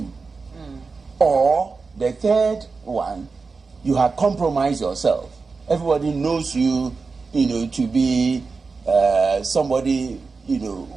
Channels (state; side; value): quieter; left; 4.5 dB